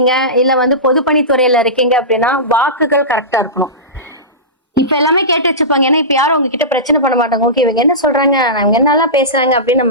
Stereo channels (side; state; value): both; normal; correlation -0.19